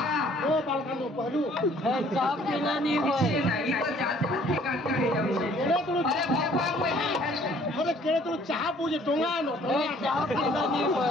ओ बालकानो पहलू चाप बिना नहीं होए नहीं तो जात के काट के जाउछे केड़े तू अरे भगवान कोई अरे केड़े तू चाह पूजे टोंगा नो चाप बिना नहीं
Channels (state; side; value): normal; both; correlation 0.58